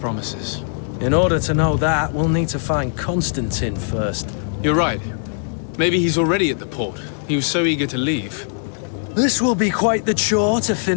In order to know that, we'll need to find Constantine first. You're right. Maybe he's already at the port. He was so eager to leave. This will be quite the chore to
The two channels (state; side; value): silent; right; digital silence